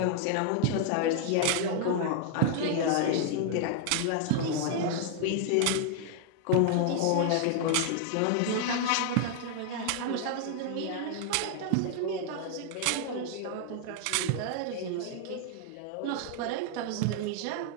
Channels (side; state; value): both; different; correlation 0.00